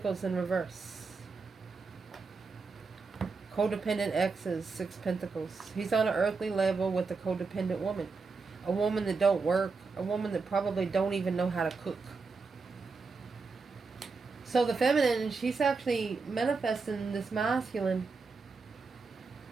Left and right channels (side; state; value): left; quieter; 4.5 dB